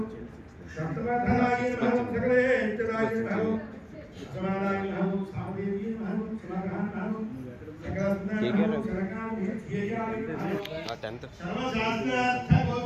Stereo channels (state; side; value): identical; both; correlation 1.00